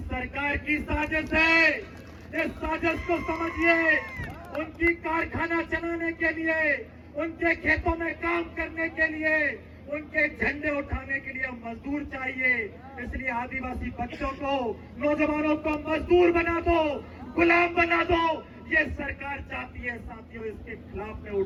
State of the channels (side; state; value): both; identical; correlation 1.00